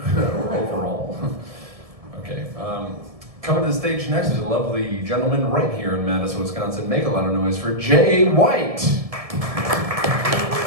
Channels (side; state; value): left; late; 1.7 ms